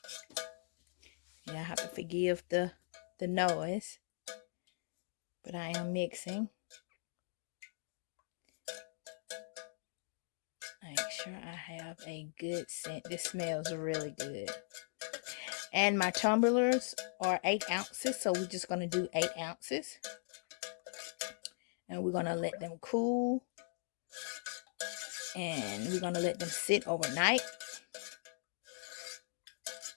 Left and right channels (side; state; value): right; silent; digital silence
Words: Yeah, I have to forgive the noise, but I am mixing. Make sure I have a good scent. This smells really good. And my tumblers are 8 ounces, so we're just going to do 8 ounces. And we're going to let them cool. And we're going to let them sit overnight.